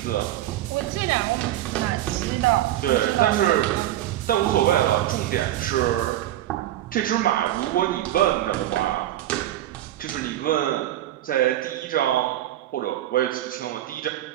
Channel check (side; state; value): left; quieter; 13.5 dB